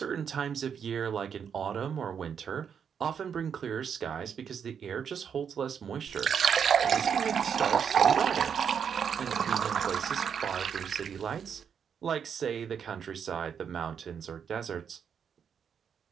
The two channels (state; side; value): quieter; left; 7.4 dB